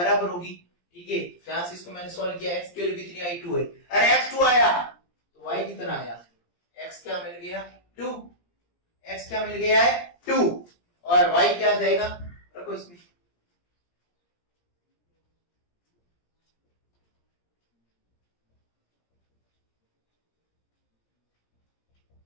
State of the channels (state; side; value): late; right; 17 ms